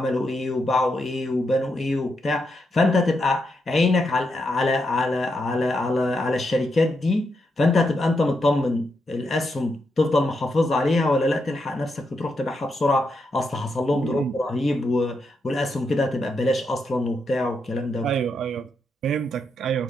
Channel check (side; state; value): both; normal; correlation 0.82